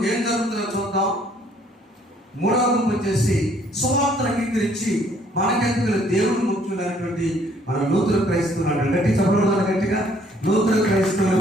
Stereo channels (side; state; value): both; normal; correlation 0.63